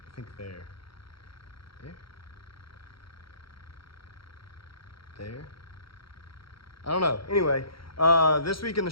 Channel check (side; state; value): right; late; 0.74 ms